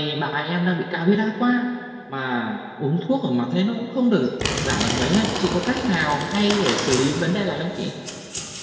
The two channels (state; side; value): identical; both; correlation 1.00